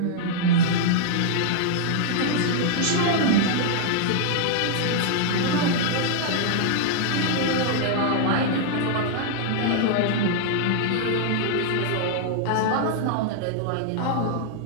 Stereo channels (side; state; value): both; different; correlation -0.01